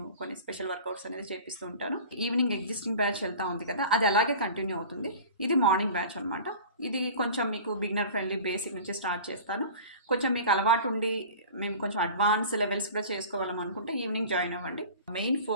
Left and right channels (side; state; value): both; inverted; correlation -0.39